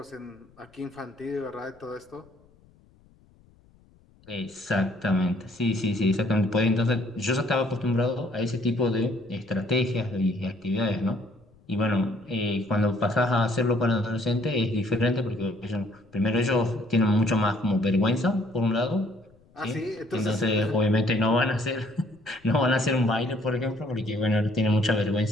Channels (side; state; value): left; noise; rumble, 30 dB below the sound